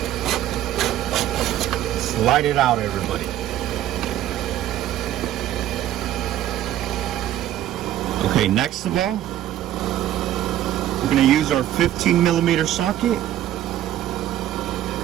Slide it out, everybody. Okay, next of all, we're going to use our 15mm socket.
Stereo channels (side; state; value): left; quieter; 12.6 dB